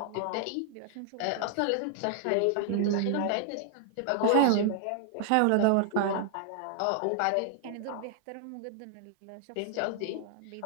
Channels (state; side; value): different; both; correlation -0.01